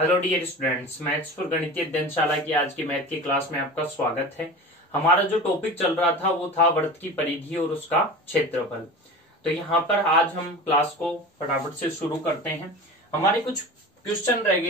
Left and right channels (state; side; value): normal; both; correlation 0.34